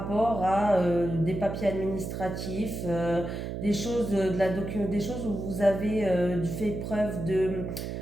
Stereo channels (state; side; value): noise; right; hum, 5 dB below the sound